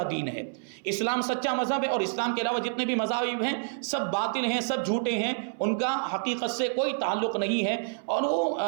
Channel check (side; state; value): left; silent; 59 dB below the other